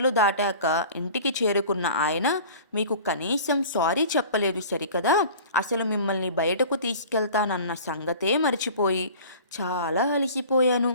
దాటాక ఇంటికి చేరుకున్న ఆయన మీకు కనీసం సారీ చెప్పలేదు సరికదా, అసలు మిమ్మల్ని బయటకు తీసుకెళ్తానన్న సంగతే మర్చిపోయి, చాలా అలసిపోయాను,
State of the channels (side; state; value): both; inverted; correlation -0.42